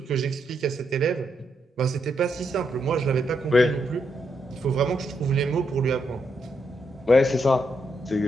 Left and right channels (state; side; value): normal; both; correlation 0.80